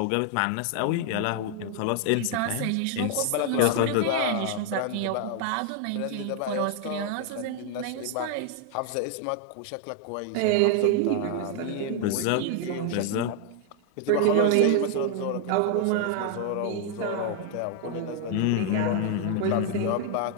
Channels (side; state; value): both; different; correlation 0.00